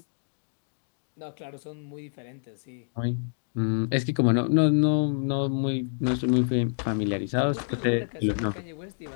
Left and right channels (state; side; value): silent; right; digital silence